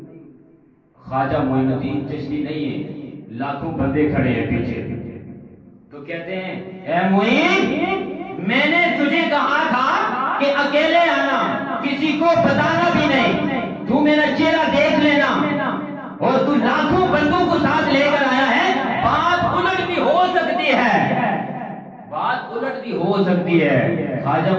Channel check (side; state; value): both; identical; correlation 1.00